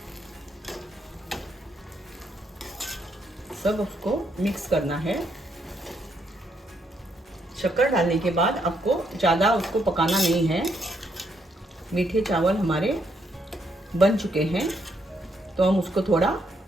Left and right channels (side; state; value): both; normal; correlation 0.75